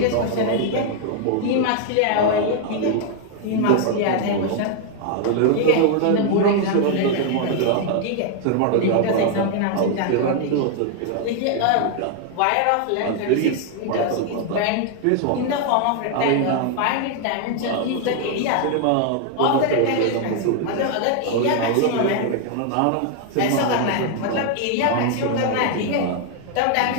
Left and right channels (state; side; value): different; both; correlation 0.00